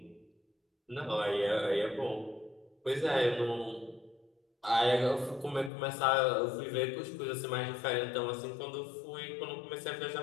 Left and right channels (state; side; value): drops out; right; at 5.7 s